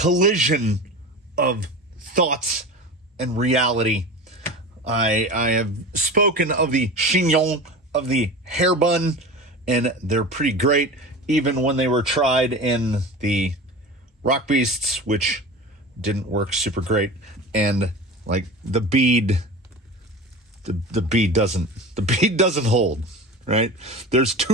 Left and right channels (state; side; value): normal; both; correlation 0.32